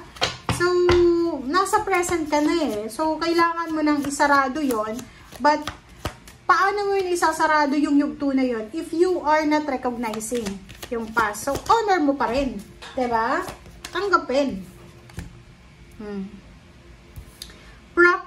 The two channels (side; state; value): both; identical; correlation 1.00